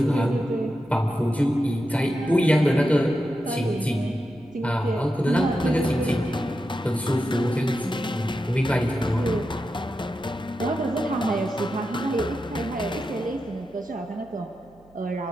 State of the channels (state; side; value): noise; right; hum, 28 dB below the sound